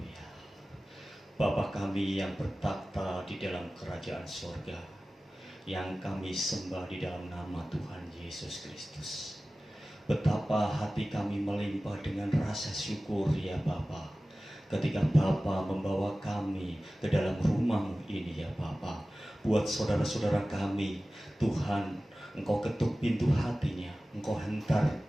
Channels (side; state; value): both; normal; correlation 0.96